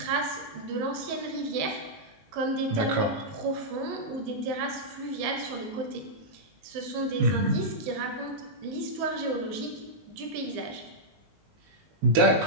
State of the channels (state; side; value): late; left; 19 ms